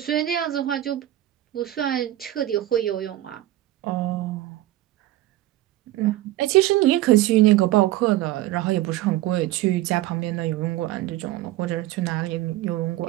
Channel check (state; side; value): quieter; left; 15.2 dB